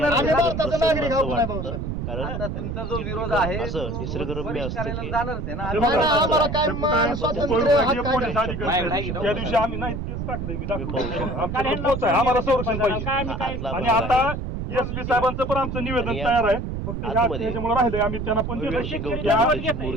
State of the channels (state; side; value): noise; right; rumble, 4 dB below the sound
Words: आम्ही भारताचा नागरिक आहोत नाही भाऊ साहेब. कारण आता तुमचा जो विरोध आहे असं निसर्गरम्य असतं करायला की जाणारच आहे ना. नाही, नाही, आम्हाला काय मान स्वातंत्र्य हक्क आहे पोलीस का? अधिकारी त्या दिवशी आम्ही नाही तेच टाकलंय मी दाखवतो. आमच्याकडे पोच आहे, आम्हाला संरक्षण पाहिजे. आतला आणि भाग आता आहे. एसपी साहेबांचं पण आमचं निवेदन आणि तयार आहे. फक्त आतमध्ये ह्याच्यामुळे राहिलंय, आम्ही त्यांना पण भव्य अशी देतो. गौतम त्या बुद्धाची